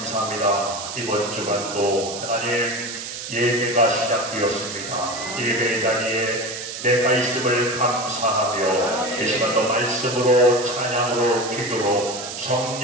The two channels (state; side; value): noise; right; hiss, 8 dB below the sound